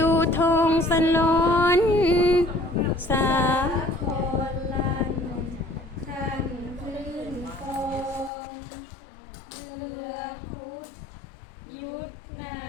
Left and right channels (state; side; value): drops out; right; at 8.3 s